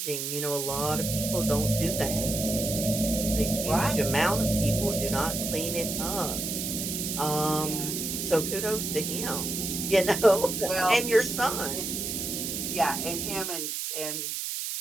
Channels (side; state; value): right; noise; hiss, 3 dB below the sound